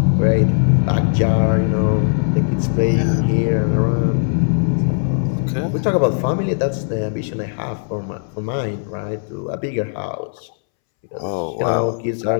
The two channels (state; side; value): silent; right; 67 dB below the other